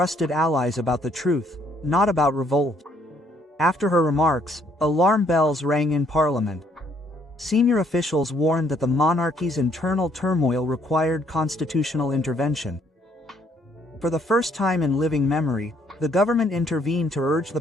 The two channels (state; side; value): normal; both; correlation 0.67